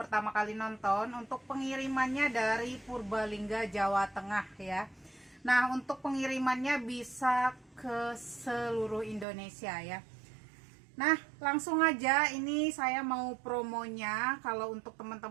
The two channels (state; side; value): drops out; left; at 9.2 s